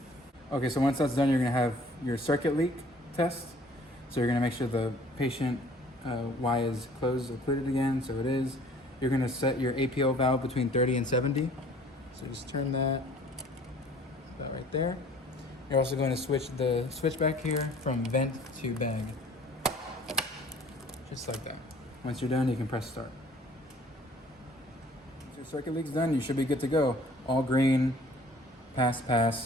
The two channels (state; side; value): normal; both; correlation 0.53